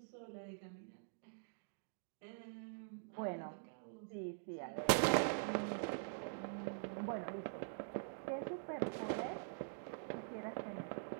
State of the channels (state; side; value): silent; left; digital silence